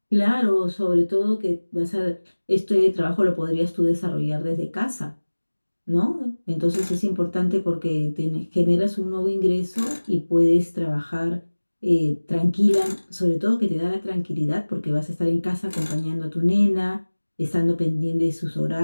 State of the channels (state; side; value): inverted; both; correlation -1.00